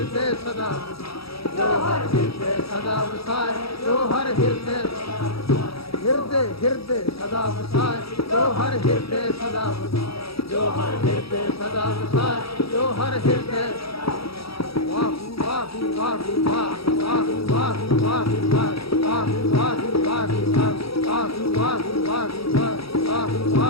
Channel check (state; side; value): late; right; 0.76 ms